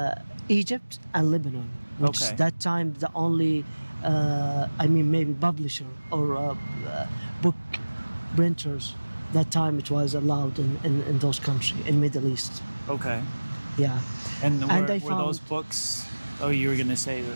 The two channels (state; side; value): inverted; both; correlation -1.00